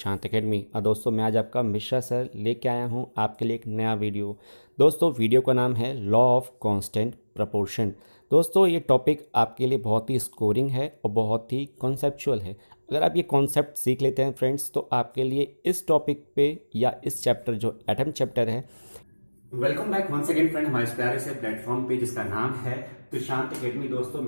एकेडमी। और दोस्तों मैं आज आपका मिश्रा सर लेके आया हूँ आपके लिए एक नया वीडियो। दोस्तों वीडियो का नाम है लॉ ऑफ कांस्टेंट प्रपोर्शन। दोस्तों ये टॉपिक आपके लिए बहुत ही स्कोरिंग है और बहुत ही कॉन्सेप्चुअल है। अगर आप ये कॉन्सेप्ट सीख लेते हैं फ्रेंड्स तो आपके लिए इस टॉपिक पे या इस चैप्टर जो एटम चैप्टर है। Welcome back once again friend हमारे इस प्यारे से प्लेटफॉर्म पे जिसका नाम है त्रिशांत एकेडमी। दोस्तों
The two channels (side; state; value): both; inverted; correlation -1.00